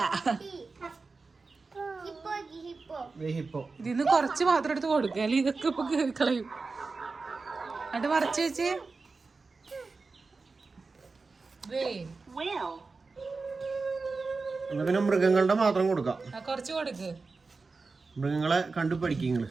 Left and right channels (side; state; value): left; quieter; 4.1 dB